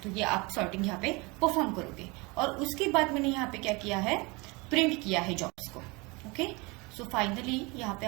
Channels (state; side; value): quieter; left; 26.4 dB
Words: तो ये आप सॉर्टिंग यहाँ पे परफॉर्म करोगे। और उसके बाद मैंने यहाँ पे क्या किया है, प्रिंट किया है जॉब्स को, ओके। सो फाइनली यहाँ पे